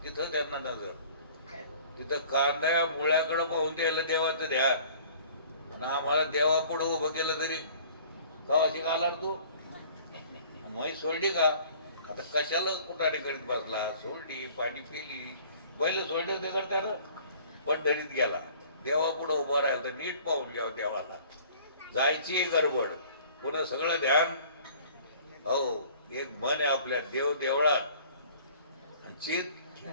तिथं त्यांना नजर. तिथं कांद्या मुळ्याकडे पाहून द्यायला देवाचं ध्यान, आणि आम्हाला देवा पुढे उभं केलं तरी कवाशी घालार तू माही सोडली का? आता कशाला कुठाने करीत बसला? सोडली, पाणी पिली, पहिलं सोडलं ते करताना पंढरीत गेला, देवा पुढे उभं राहिलं तर नीट पाहून घ्यावं देवाला. जायची गडबड, पुन्हा सगळं ध्यान. हो, एक मन आहे आपल्या, देव देवळात आणि चित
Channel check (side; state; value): both; inverted; correlation -0.51